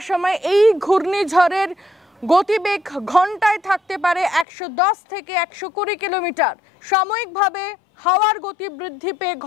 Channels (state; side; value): drops out; right; at 4.5 s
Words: সময় এই ঘূর্ণিঝড়ের গতিবেগ ঘন্টায় থাকতে পারে 110 থেকে 120 কিলোমিটার। সাময়িকভাবে হাওয়ার গতি বৃদ্ধি পেয়ে